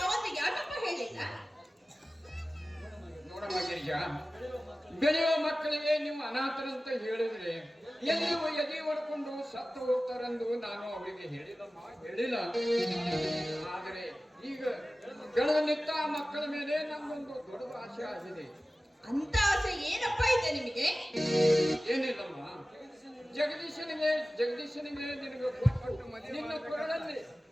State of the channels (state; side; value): normal; both; correlation 0.96